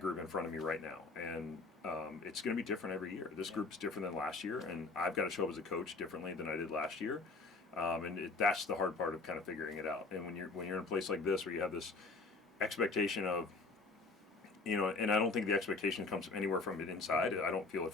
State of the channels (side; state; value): right; quieter; 3.8 dB